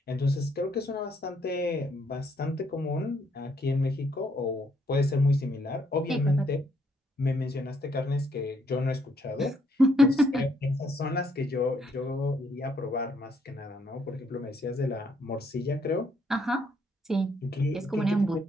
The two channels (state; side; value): normal; both; correlation 0.70